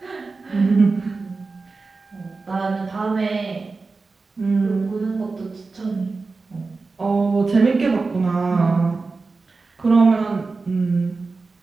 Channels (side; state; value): left; quieter; 4.0 dB